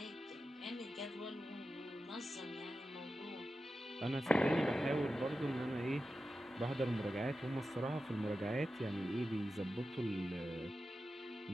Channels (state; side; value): normal; both; correlation 0.92